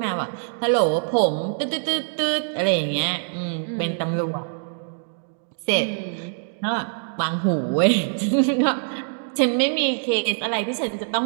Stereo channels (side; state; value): left; silent; digital silence